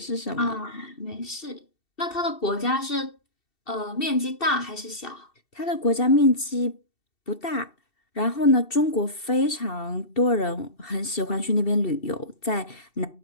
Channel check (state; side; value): late; right; 2.7 ms